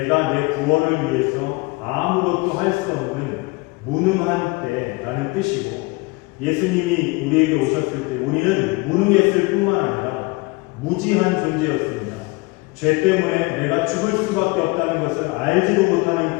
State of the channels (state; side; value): quieter; right; 25.3 dB